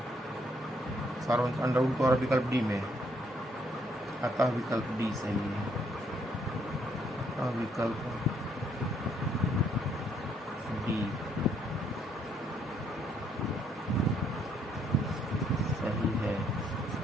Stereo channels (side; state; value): both; normal; correlation 0.69